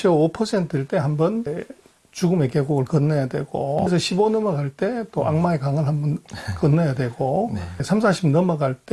5%일 때 한 번 죽음의 계곡을 건너야 되고, 그래서 15 넘어갈 때 또 악마의 강을 한번 건너야 되고, 3, 40 넘어갈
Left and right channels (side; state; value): both; identical; correlation 1.00